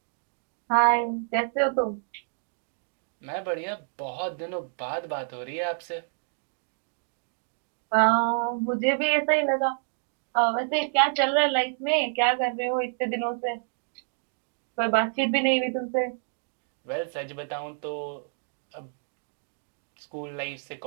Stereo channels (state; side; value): silent; left; digital silence